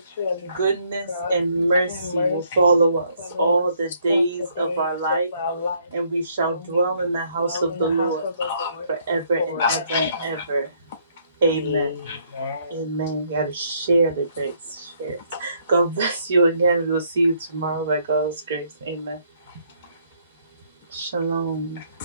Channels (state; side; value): inverted; both; correlation -0.68